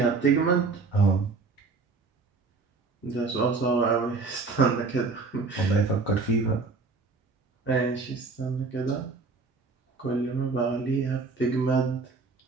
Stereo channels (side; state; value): left; quieter; 4.1 dB